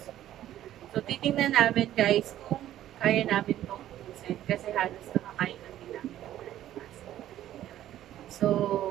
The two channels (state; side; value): quieter; left; 12.6 dB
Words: So titingnan namin guys kung kaya namin itong ubusin kasi halos nakakain na din namin ng breakfast. So,